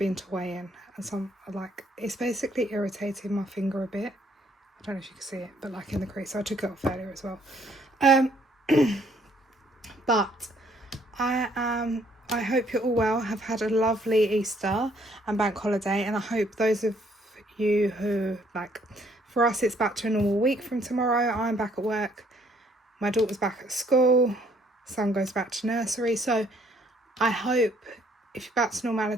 to weigh-in, and some it's basically irritating my finger a bit. I don't know if you can see it, but like in the crease. So I took it off earlier as well. But I hope you're all well, have had a lovely Easter and bank holiday, and I hope those of you who, for us it's back to a normal week from tomorrow. I'm back at work, my daughter's back at school, son goes back to nursery, so I hope if you're back to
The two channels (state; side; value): normal; both; correlation 0.65